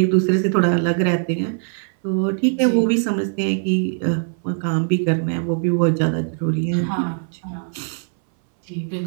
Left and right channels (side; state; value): left; silent; 63 dB below the other